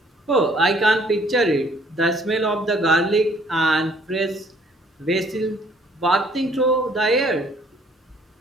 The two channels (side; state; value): both; normal; correlation 0.61